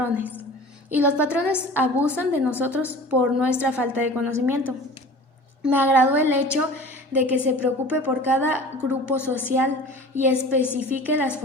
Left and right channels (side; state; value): both; normal; correlation 0.41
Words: y los patrones abusan de nosotros por nuestra falta de conocimiento. Me agradó el hecho de que se preocupe por cada grupo social y especifique las